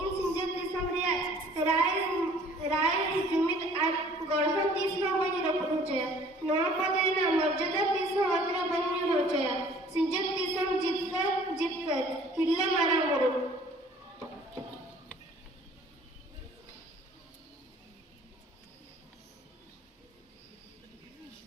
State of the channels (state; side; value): normal; both; correlation 0.53